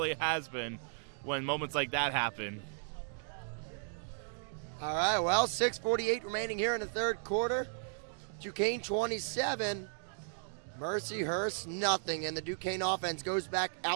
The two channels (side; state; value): left; silent; digital silence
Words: has been when moments like that happen. All right, well, 6:48 remaining here in the third quarter. Duquesne 27, Mercyhurst nothing, and the Duquesne offense goes back